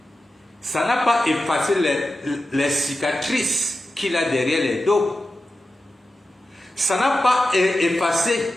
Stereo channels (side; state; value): both; normal; correlation 0.92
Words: ça n'a pas effacé les cicatrices qu'il a derrière les dos. Ça n'a pas effacé